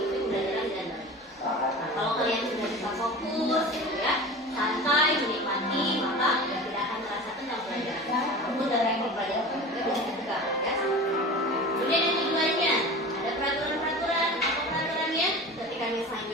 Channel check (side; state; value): both; normal; correlation 0.34